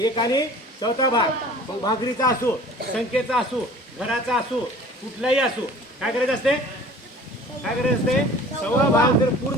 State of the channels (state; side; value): normal; both; correlation 0.46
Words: आणि चौथा भाग. मग भाकरीचा असो, संख्येचा असो, घराचा असो, कुठलाही असो, काय करायचं असते, काय करायचं असते. सव्वा भाग जर